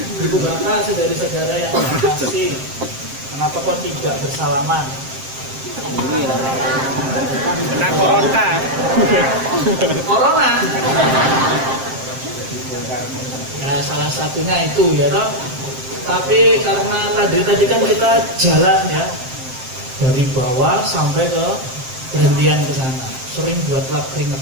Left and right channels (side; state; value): left; late; 7.6 ms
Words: Ibu bapak, saudara-saudara yang terkasih, kenapa kok tidak bersalaman? Kena Corona. Ya salah satunya itu ya toh. Tapi karena tadi kan kita jalan ya dari bawah sampai ke berhentian ke sana, sering buat lap keringet